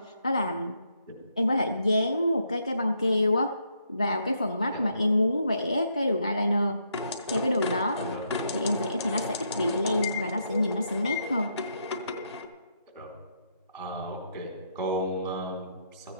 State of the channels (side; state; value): both; inverted; correlation -0.77